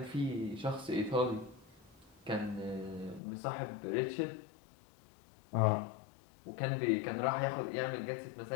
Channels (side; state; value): right; drops out; at 3.2 s